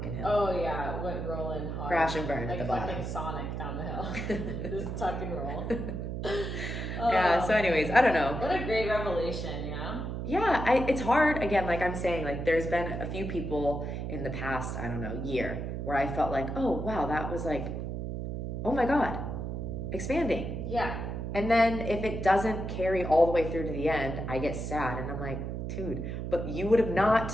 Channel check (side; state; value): right; noise; hum, 4 dB below the sound